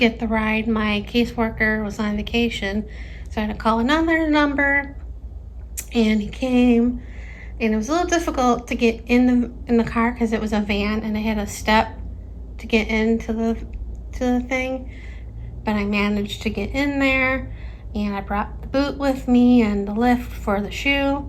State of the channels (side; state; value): both; identical; correlation 1.00